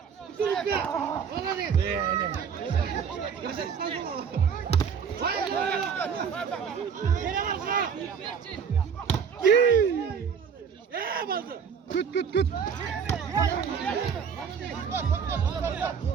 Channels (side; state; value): left; quieter; 6.8 dB